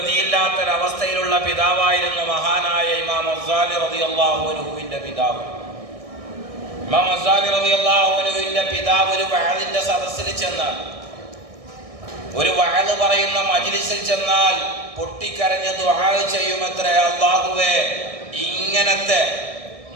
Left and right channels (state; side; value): late; left; 1.6 ms